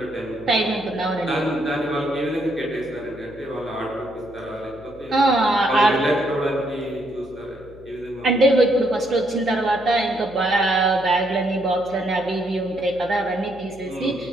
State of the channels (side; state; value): left; noise; hum, 21 dB below the sound